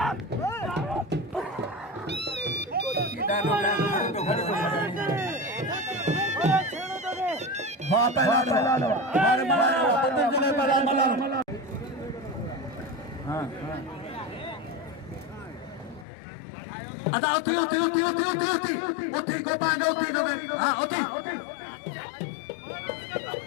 अदा उठी उठी उठी उठी उठी उठी उठी को पांगे उठी को हां उठी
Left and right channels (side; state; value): right; drops out; at 16.1 s